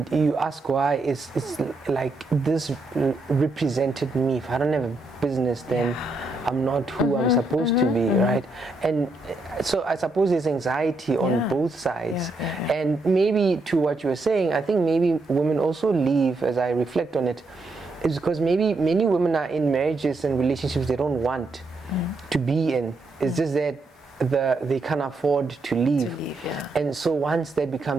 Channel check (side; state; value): left; quieter; 3.1 dB